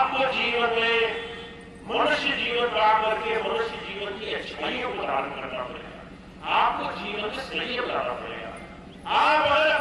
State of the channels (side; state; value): both; identical; correlation 1.00